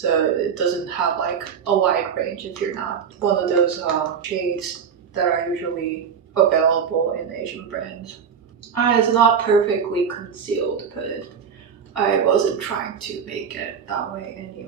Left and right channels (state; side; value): quieter; left; 7.1 dB